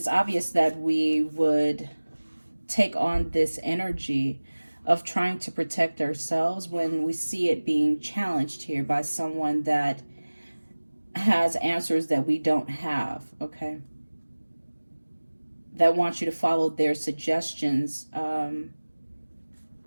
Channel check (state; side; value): inverted; both; correlation -1.00